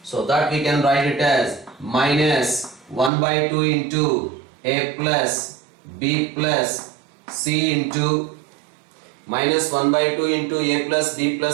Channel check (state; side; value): drops out; left; at 3.1 s